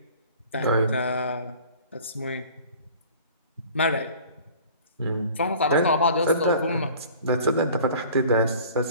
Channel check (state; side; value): inverted; both; correlation -0.47